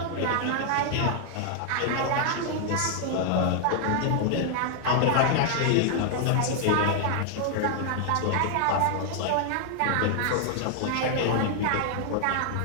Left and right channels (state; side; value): different; both; correlation 0.00